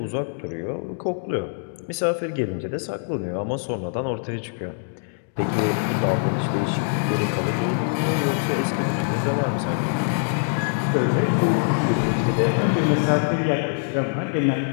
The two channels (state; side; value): silent; right; digital silence